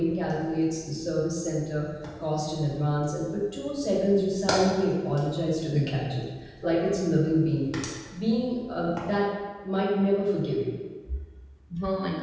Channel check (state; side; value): identical; both; correlation 1.00